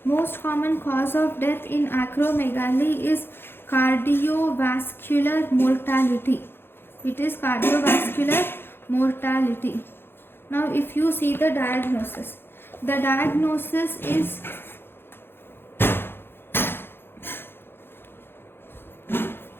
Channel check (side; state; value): right; late; 0.11 ms